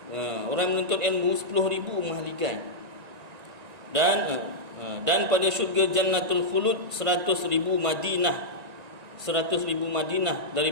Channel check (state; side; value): late; left; 1.9 ms